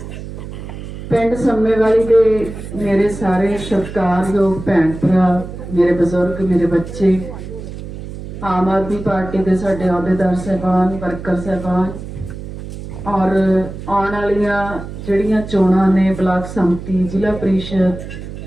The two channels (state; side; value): noise; right; hum, 10 dB below the sound